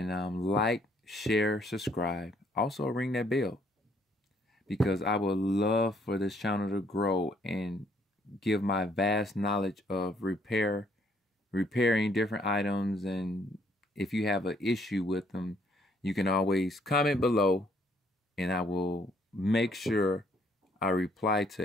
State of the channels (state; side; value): normal; both; correlation 0.67